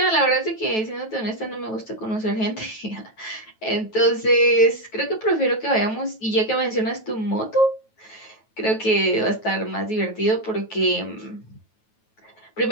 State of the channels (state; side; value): late; right; 9.2 ms